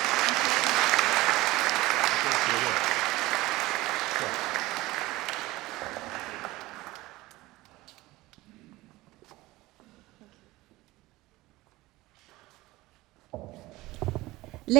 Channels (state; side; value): quieter; left; 19.2 dB